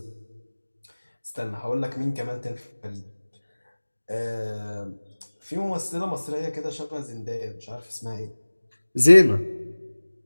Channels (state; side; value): inverted; both; correlation -1.00